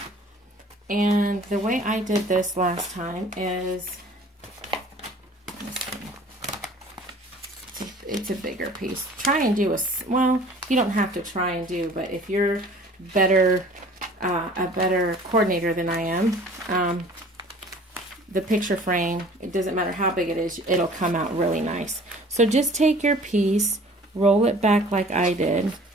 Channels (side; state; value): both; normal; correlation 0.49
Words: And the way I did this last time is, it's a bigger piece. Try and do well, you don't have to try and do, but if you're better, a better coordinator than I am, the picture frame, it doesn't matter how big it is, it'll come out really nice. So just take your piece, roll it back like I did,